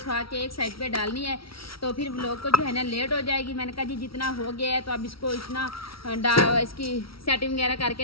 के एक साइड पे डालनी है, तो फिर लोग को जो है ना लेट हो जाएगी। मैंने कहा जी जितना हो गया है तो अब इसको इतना इसकी सेटिंग वगैरह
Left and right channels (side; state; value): right; late; 0.75 ms